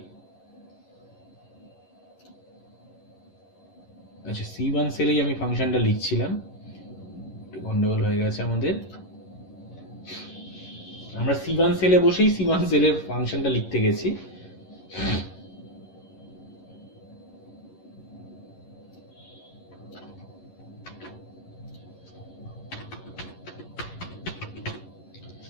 আচ্ছা C1 সেলেই আমি ফাংশনটা লিখছিলাম, একটু গন্ডগোল হয়ে গেছে আমাদের। আমরা C1 সেলে বসেই C1 সেলের ফাংশনটা লিখতে গেছি।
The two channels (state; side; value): late; right; 11 ms